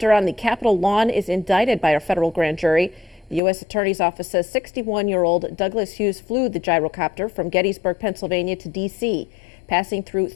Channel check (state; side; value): drops out; right; at 3.4 s